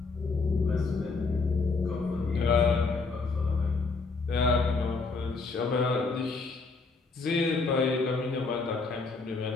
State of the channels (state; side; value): quieter; right; 4.1 dB